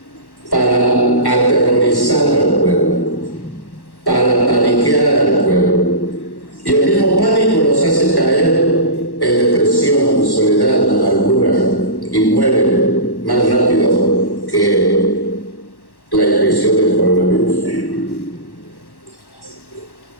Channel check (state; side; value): late; right; 1.1 ms